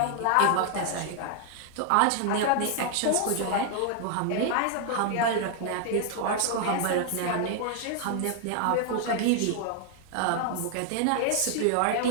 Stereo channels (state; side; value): different; both; correlation 0.00